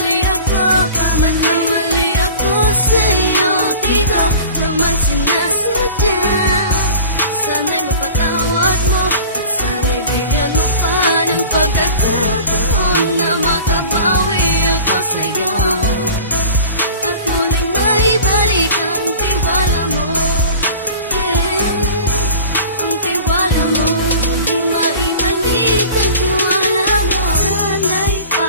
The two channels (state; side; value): inverted; both; correlation -0.40